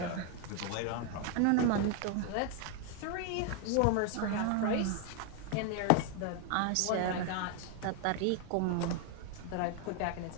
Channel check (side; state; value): both; different; correlation 0.01